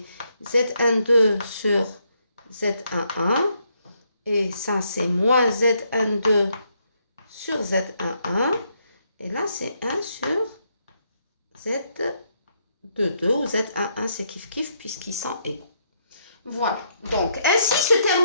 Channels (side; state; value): both; inverted; correlation -0.75